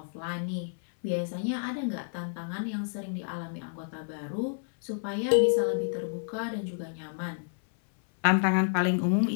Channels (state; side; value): silent; right; 58 dB below the other